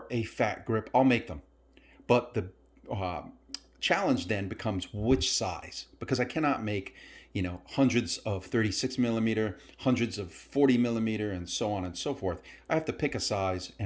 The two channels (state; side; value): identical; both; correlation 1.00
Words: a fat grip, I'll make them. But the challenge then becomes which size, because I cannot make, hundreds of 36 millimeter, hundreds of 40 millimeter, and so on and so forth. I have to pick a size